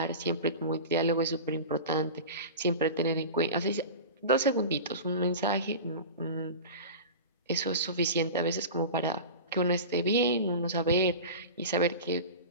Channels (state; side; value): inverted; both; correlation -0.31